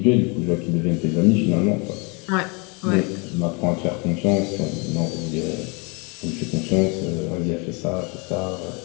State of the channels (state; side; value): quieter; right; 31.5 dB